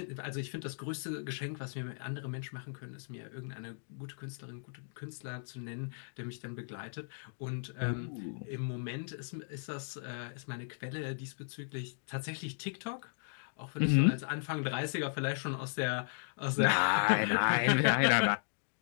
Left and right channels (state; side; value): silent; right; digital silence